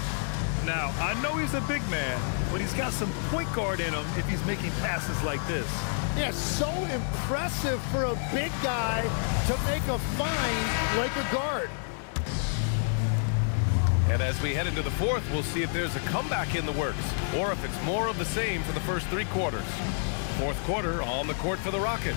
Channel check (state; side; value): silent; right; digital silence